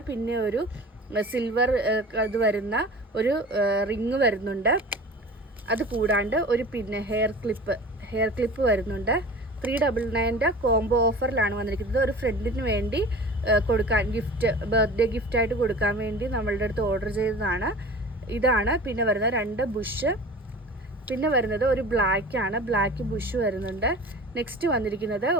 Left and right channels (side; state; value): both; normal; correlation 0.39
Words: പിന്നെ ഒരു സിൽവർ ഇത് വരുന്ന ഒരു റിങ് വരുന്നുണ്ട്. അത് കൂടാണ്ട് ഒരു പിന്നെ ഹെയർ ക്ലിപ്പ് വരുന്നുണ്ട്. 399 കോംബോ ഓഫറിലാണ് വന്നിരിക്കുന്നത്. ഒരു ഫ്രണ്ടിന് വേണ്ടി കൊടുക്കാൻ ബർത്ത്ഡേ ഗിഫ്റ്റായിട്ട് കൊടുക്കാൻ വേണ്ടി നമ്മളുടെ അടുത്ത് ഓർഡർ ചെയ്തതാണ്. ഇതാണ്. പിന്നെ വരുന്ന 2 ബുഷ്. പിന്നെ വരുന്നത് ഒരു ബ്ലാക്ക് ബുഷ് വരുന്നുണ്ട്. നെക്സ്റ്റ് വന്നിരിക്കുന്നത്